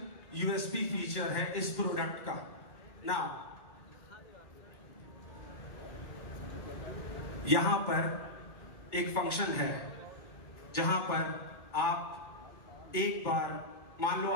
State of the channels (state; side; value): late; right; 2.2 ms